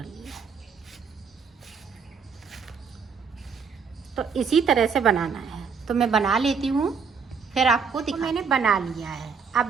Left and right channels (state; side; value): quieter; left; 5.9 dB